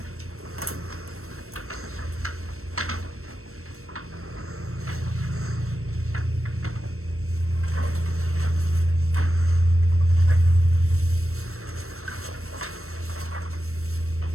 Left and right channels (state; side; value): late; left; 0.63 ms